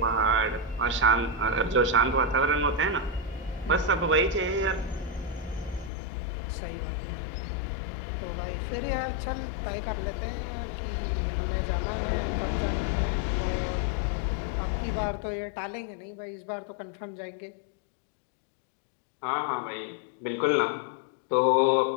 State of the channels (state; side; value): drops out; right; at 5.9 s